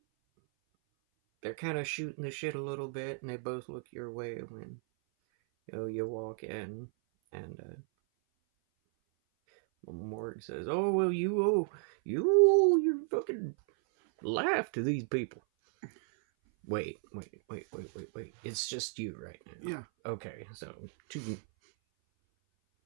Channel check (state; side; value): silent; left; 55 dB below the other